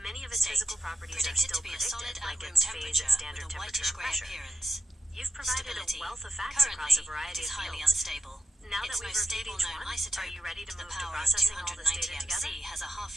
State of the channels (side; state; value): both; normal; correlation 0.83